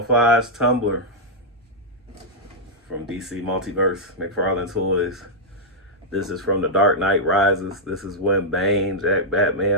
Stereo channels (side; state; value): both; normal; correlation -0.07